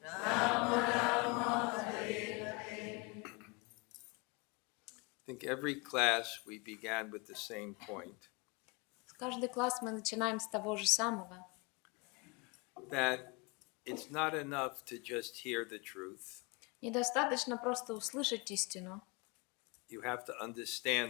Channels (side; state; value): right; quieter; 29.0 dB